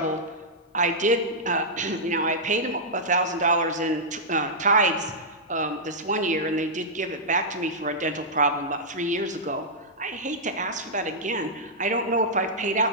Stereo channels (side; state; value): both; normal; correlation -0.10